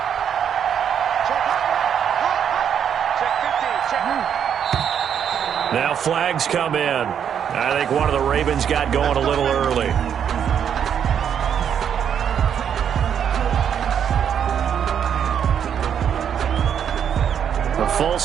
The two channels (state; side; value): quieter; left; 8.4 dB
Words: Now flags come in. I think one of the Ravens got going a little early. A full